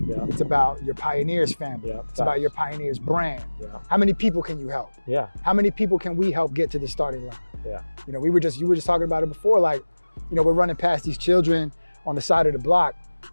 Yeah. It's about your Pioneers family. Yeah. It's about your Pioneers brand. Yeah. How many people can you help? Yeah. How many people can we help get to the starting line? Yeah. You were just talking about it before, like, we're running past these children on the side of the block,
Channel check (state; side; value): inverted; both; correlation -1.00